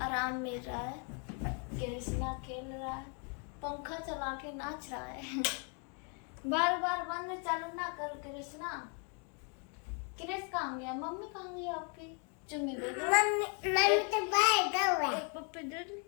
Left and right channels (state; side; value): quieter; right; 38.6 dB